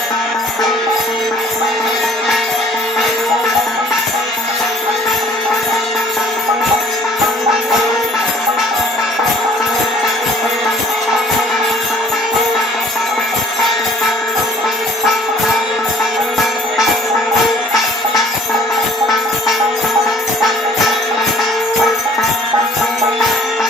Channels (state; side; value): normal; both; correlation 0.54